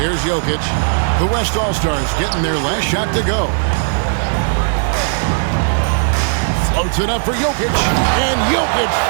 Jokic. The West All-Stars getting their last shot to go. Floats it up for Jokic, and Jokic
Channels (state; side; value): silent; left; digital silence